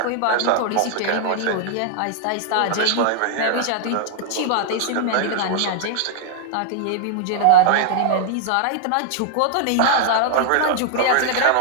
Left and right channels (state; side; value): different; both; correlation -0.01